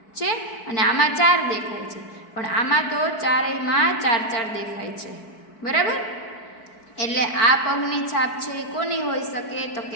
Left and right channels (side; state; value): right; late; 4.6 ms